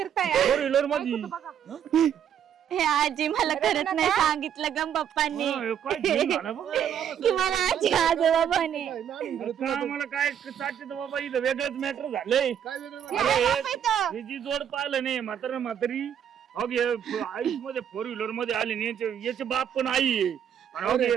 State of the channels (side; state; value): left; quieter; 9.1 dB